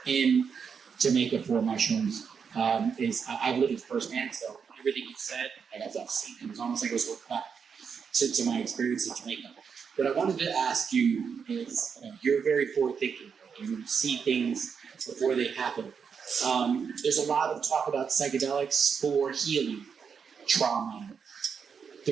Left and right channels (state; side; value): quieter; left; 6.4 dB